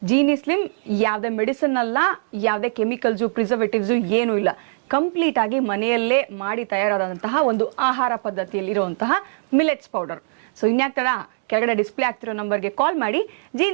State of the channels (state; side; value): silent; left; 64 dB below the other